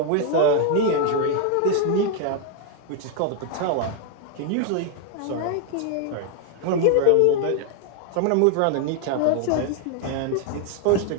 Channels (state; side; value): different; both; correlation 0.00